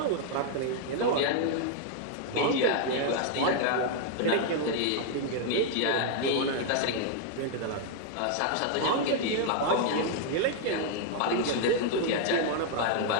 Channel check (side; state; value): both; different; correlation 0.00